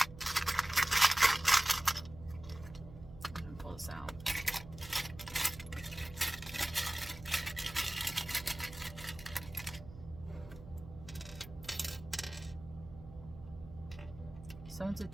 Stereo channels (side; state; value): right; noise; hum, 16 dB below the sound